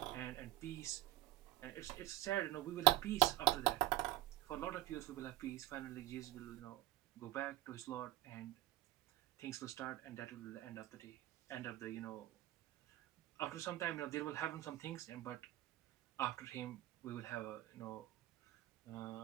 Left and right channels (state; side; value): quieter; left; 15.8 dB